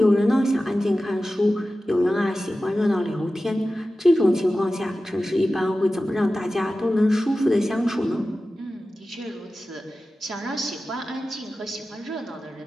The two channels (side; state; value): both; normal; correlation 0.94